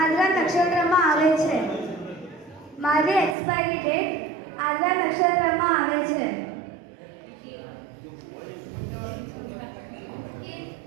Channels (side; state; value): left; drops out; at 3.4 s